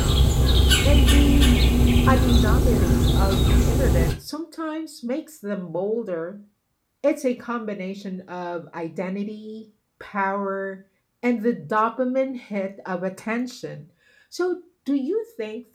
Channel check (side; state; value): both; identical; correlation 1.00